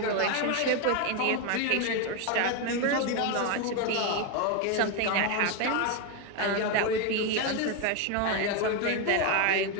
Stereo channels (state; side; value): different; both; correlation 0.02